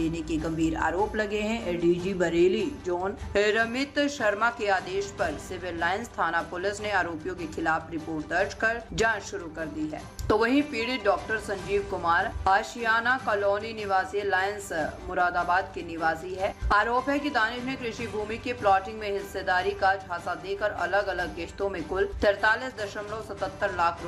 के गंभीर आरोप लगे हैं। एडीजी बरेली जोन रमित शर्मा के आदेश पर सिविल लाइंस थाना पुलिस ने आरोपियों के खिलाफ रिपोर्ट दर्ज कर जांच शुरू कर दी है। तो वहीं पीड़ित डॉक्टर संजीव कुमार आशियाना कॉलोनी निवासी लायंस मुरादाबाद के निवासी है। आरोप है कि दानिश ने कृषि भूमि के प्लॉटिंग में हिस्सेदारी का झांसा देकर अलग अलग किश्तों में कुल 43.77 लाख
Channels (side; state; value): both; identical; correlation 1.00